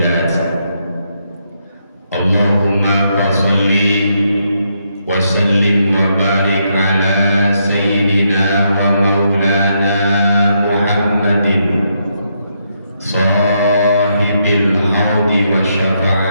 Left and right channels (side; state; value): both; inverted; correlation -0.78